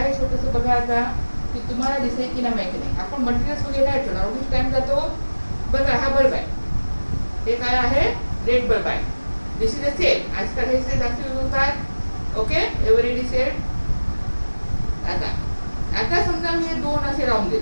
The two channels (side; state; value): both; inverted; correlation -1.00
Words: छोटंसं, बघा आता की तुम्हाला दिसेल की नाही माहिती नाही. आपण मटेरियल्स वगैरे नाही ठेवणार, उगीच टाइम जातो. बघा हा बल्ब आहे, हे काय आहे, रेड बल्ब आहे. This is a cell. आजकाल हे सेल जास्त यूज होतात. Okay, everyday cell. आता आता समजा मी हे दोन असे लावून